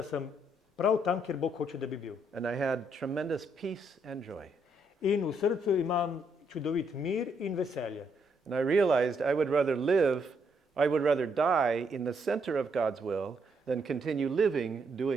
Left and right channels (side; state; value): both; normal; correlation 0.74